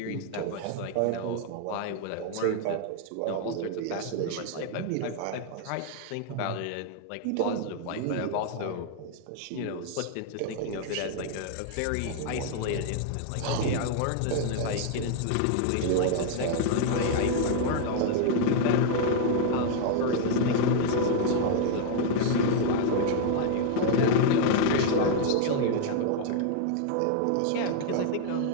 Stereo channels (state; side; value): different; both; correlation 0.00